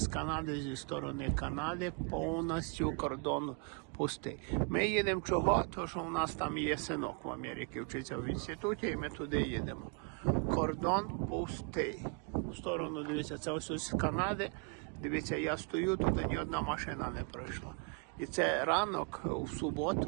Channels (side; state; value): left; quieter; 36.9 dB